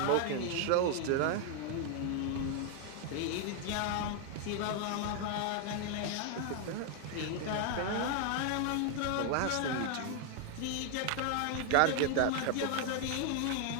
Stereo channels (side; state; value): both; different; correlation 0.00